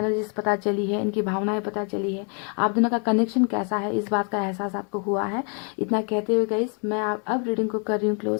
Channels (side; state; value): right; quieter; 39.3 dB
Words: पता चली है, इनकी भावनाएं पता चली है, आप दोनों का कनेक्शन कैसा है, इस बात का एहसास आपको हुआ है। इतना कहते हुए गाइस, मैं अब रीडिंग को कर रही हूँ